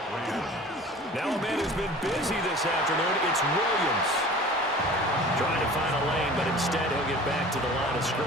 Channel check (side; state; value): both; normal; correlation 0.43